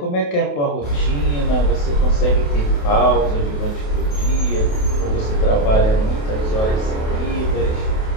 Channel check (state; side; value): late; right; 28 ms